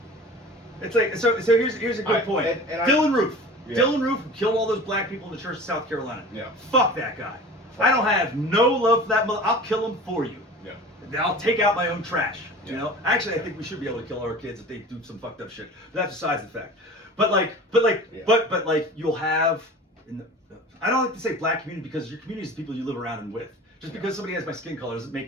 It's like so here's a good point. Dylan Roof. Yeah. Dylan Roof who killed all those black people in the church of South Carolina. Yeah. Fuck that guy. I don't have no love for that mother. I'll kill him for you. Yeah. I'll take out my own trash. You Yeah. know. Actually, I think we should be able to kill our kids if they do some fucked up shit. But that's besides the fact. But you'll have. I don't like to say black community because your community is the people you live around and with. Just because somebody has my skin color doesn't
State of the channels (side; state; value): both; normal; correlation 0.39